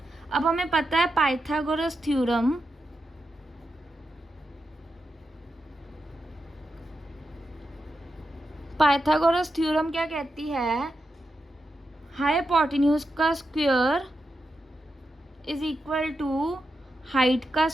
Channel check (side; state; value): both; normal; correlation 0.87